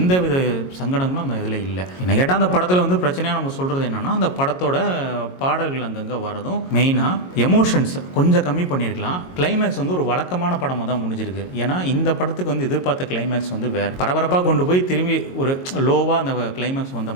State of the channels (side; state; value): right; late; 22 ms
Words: வித சங்கடங்களும் அந்த இதில் இல்லை. என்ன கேட்டால் அந்த படத்தில் பிரச்சனையாக நம்ம சொல்கிறது என்னென்னா அந்த படத்தோட பாடல்கள் அங்கங்கே வரதும் மெயினாக எமோஷன்ஸ் கொஞ்சம் கம்மி பண்ணியிருக்கலாம். கிளைமேக்ஸ் ஒரு வழக்கமான படமாக தான் முடிஞ்சிருக்கு. ஏன்னா இந்த படத்துக்கு எதிர்பார்த்த கிளைமேக்ஸ் வேறு பரபரப்பாக கொண்டு போய் திரும்பி ஒரு லோவாக அந்த கிளைமேக்ஸ் வந்த